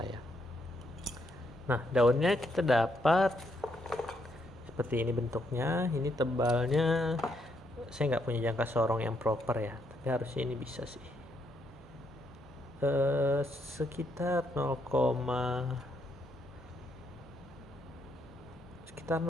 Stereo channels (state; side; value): normal; both; correlation 0.76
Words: Nah, daunnya kita dapat seperti ini bentuknya. Ini tebalnya saya nggak punya jangka sorong yang proper ya, tapi harusnya ini bisa sih. Sekitar